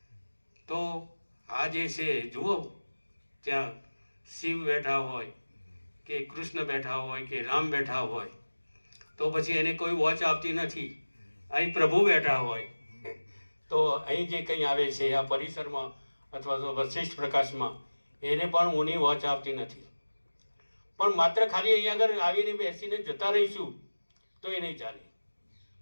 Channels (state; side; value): inverted; both; correlation -1.00